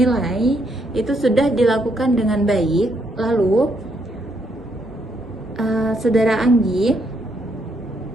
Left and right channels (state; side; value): normal; both; correlation 0.75